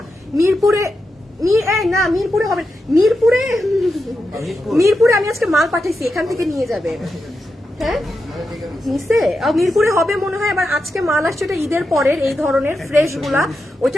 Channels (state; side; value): normal; both; correlation 0.88